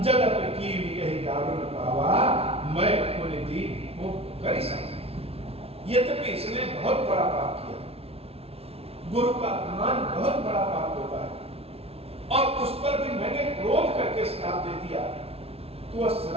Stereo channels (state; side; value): late; left; 0.29 ms